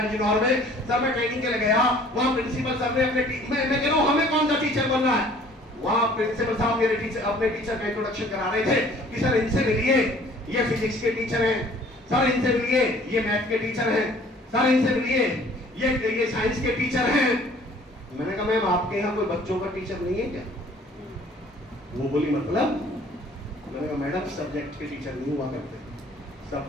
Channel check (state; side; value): normal; both; correlation 0.54